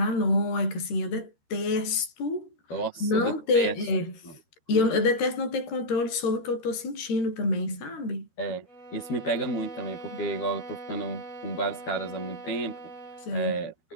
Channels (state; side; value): late; right; 13 ms